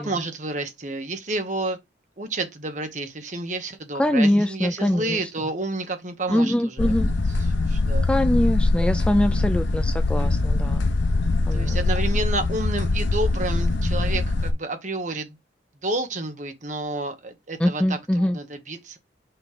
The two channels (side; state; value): both; normal; correlation 0.82